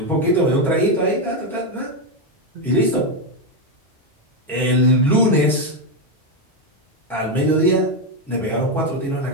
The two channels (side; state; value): both; normal; correlation 0.07